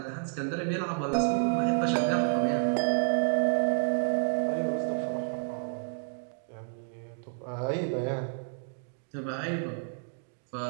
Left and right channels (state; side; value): silent; left; digital silence